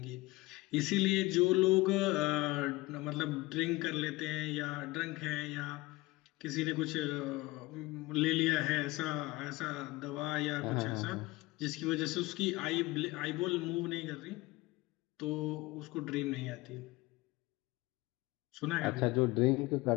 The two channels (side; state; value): right; quieter; 20.8 dB